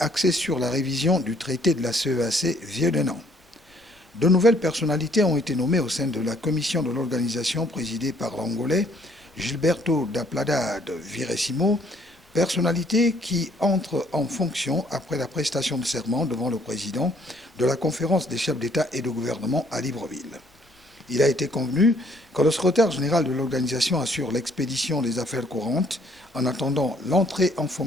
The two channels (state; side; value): normal; both; correlation 0.64